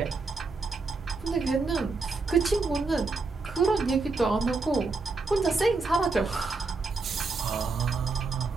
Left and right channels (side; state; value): left; quieter; 3.9 dB